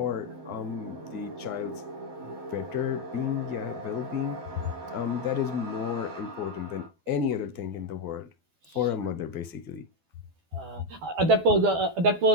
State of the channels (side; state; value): left; late; 12 ms